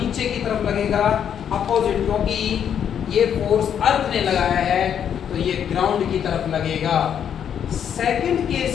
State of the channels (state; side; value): quieter; right; 8.7 dB